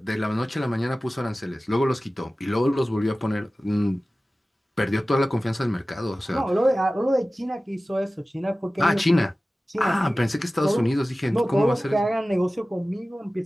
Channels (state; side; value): normal; both; correlation 0.96